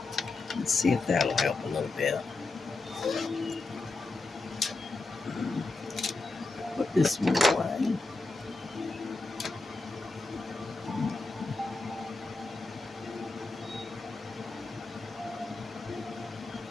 Let's see if that'll help a little bit. Put this one away.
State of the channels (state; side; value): quieter; right; 3.4 dB